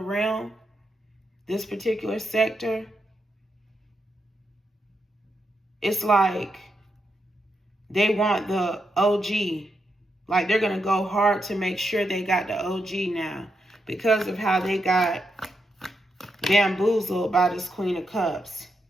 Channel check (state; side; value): normal; both; correlation 0.83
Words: this particular sector. It's like they want the OG. Like they're going to go hard to make sure they got the OG now because of how they got bamboozled by this Queen of Cups.